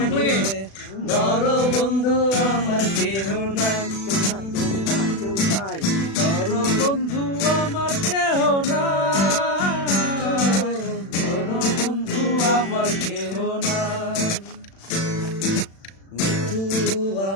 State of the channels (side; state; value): right; late; 36 ms